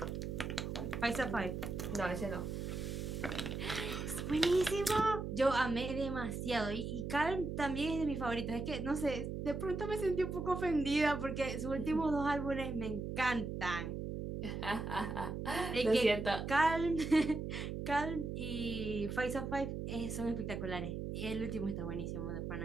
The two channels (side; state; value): right; noise; hum, 4 dB below the sound